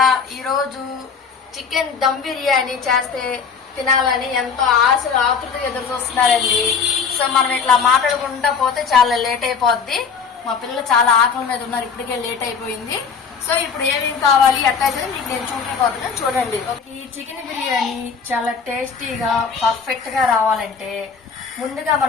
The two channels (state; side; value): quieter; right; 5.9 dB